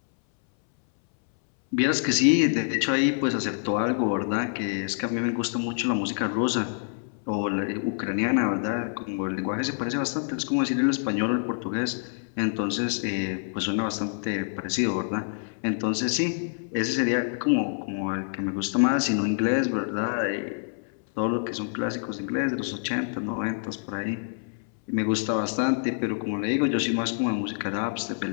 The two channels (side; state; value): right; silent; 60 dB below the other